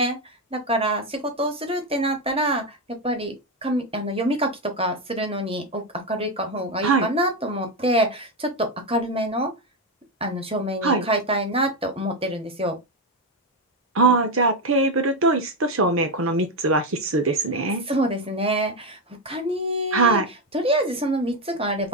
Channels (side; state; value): both; normal; correlation 0.09